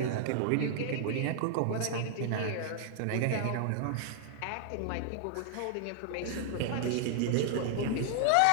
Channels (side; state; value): both; different; correlation -0.01